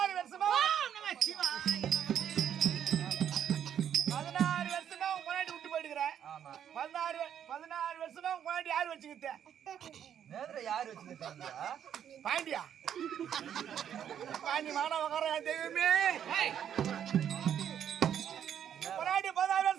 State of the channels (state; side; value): quieter; left; 9.3 dB